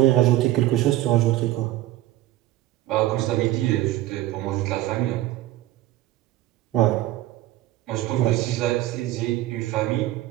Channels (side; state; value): left; quieter; 15.2 dB